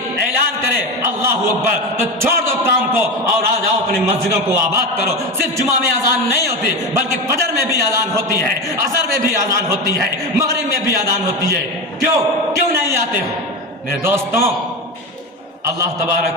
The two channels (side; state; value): both; normal; correlation 0.21